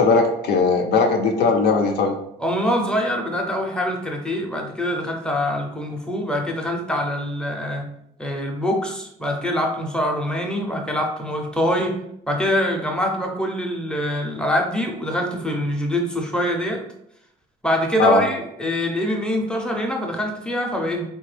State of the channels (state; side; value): normal; both; correlation 0.48